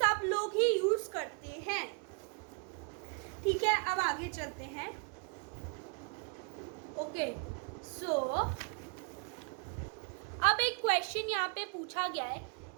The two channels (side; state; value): left; quieter; 36.3 dB